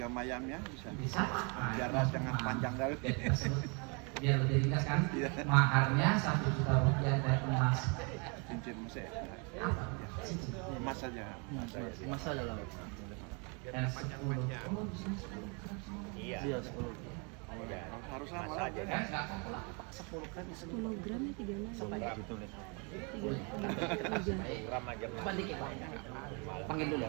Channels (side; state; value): left; quieter; 33.8 dB